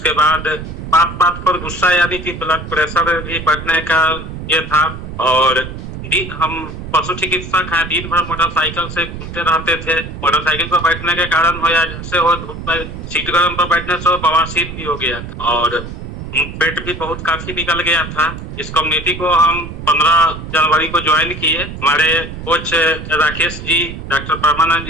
बाद बात बात पर गुस्सा, यानी कि ब्लड प्रेशर भी बढ़ने का ये था। और हम पशु चिकित्सक हैं, दिन भर मोटरसाइकिल से घूमते रहते थे। मोटरसाइकिल पर बैठने के कारण हो या जैसे हो, धूप में सीट गर्म पर बैठने से बवासीर भी हो गया और पेट भी बहुत काफी निकल गया था। इस कम्युनिटी को हम 15 जनवरी को ज्वाइन किए। हमारे कोच राकेश जी, डॉक्टर परमानंद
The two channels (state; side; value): noise; right; rumble, 9 dB below the sound